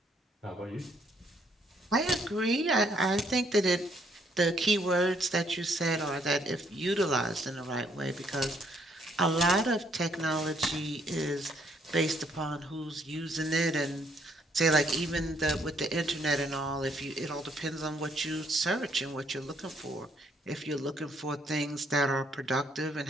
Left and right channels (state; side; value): normal; both; correlation 0.68